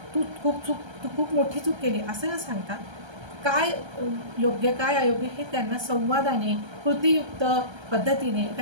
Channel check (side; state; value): left; late; 1.3 ms